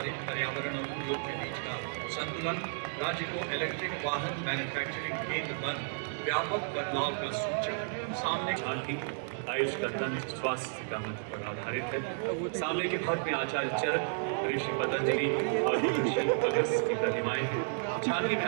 पर्यावरण और उद्योग के बीच का संतुलन राज्य को इलेक्ट्रिक वाहन मैन्युफैक्चरिंग केंद्र बन व्यापक बदलाव का सूचक। सामने झांकी आयुष का तंत्र स्वास्थ्य का मंत्र पर आधारित है। सामने के भाग में आचार्य चरक, ऋषि पतंजलि और ऋषि अगस्त्य की प्रतिमाएं हैं। झांकी में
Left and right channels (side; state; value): left; silent; digital silence